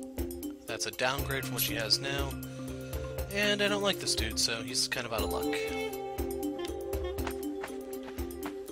That's a downgrade from what she has now. And I don't like this dude, so he's kind of out of luck.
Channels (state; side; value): identical; both; correlation 1.00